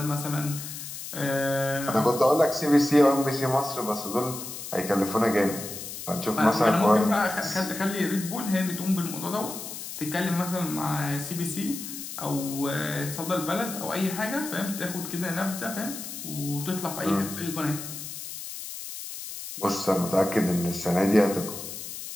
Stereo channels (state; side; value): noise; left; hiss, 9 dB below the sound